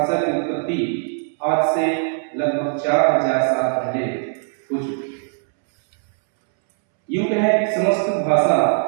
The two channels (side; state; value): left; silent; 65 dB below the other